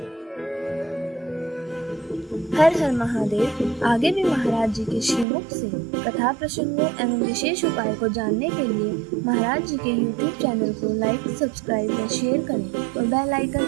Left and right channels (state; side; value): drops out; left; at 5.2 s